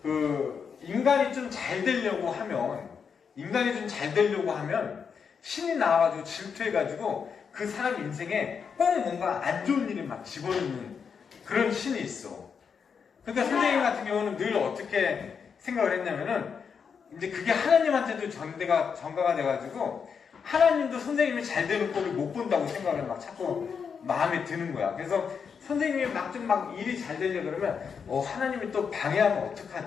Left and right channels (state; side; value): quieter; right; 6.4 dB